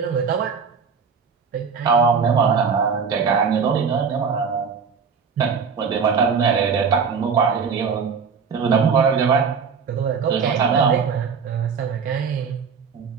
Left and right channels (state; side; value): quieter; left; 6.0 dB